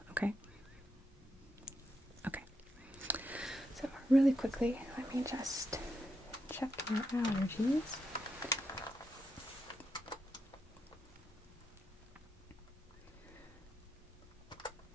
okay? Okay. So really quickly, let me just check your allergies.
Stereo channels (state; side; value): normal; both; correlation 0.82